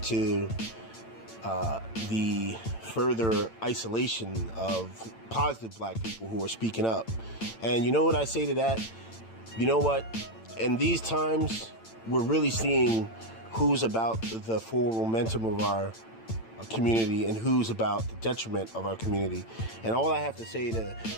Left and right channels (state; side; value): late; right; 8.9 ms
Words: to the further isolation of positive black people who are speaking up. And you know what I say to that? You know what? In these times, we're really seeing who's about the forward momentum of our community and who's about the detriment of our community. And all I have to say to